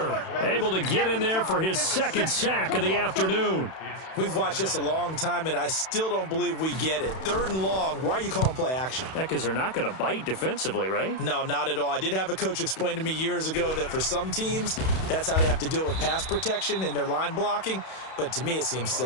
able to get in there for his 2nd sack of the afternoon. We've watched this a long time, and I still don't believe we get it. 3rd and long. Why are you calling play action? Yeah, because they're not going to bite defensively, right? No, not at all. I did have a coach explain to me years ago that for some teams, that's how they have to deal with pass protection and their line blocking. But to me, it seems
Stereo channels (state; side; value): late; right; 31 ms